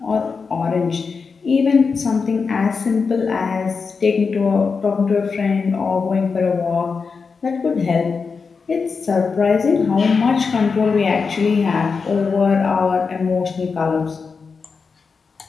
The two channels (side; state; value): right; quieter; 5.1 dB